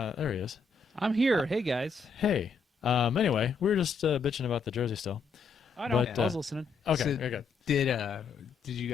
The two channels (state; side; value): quieter; right; 4.9 dB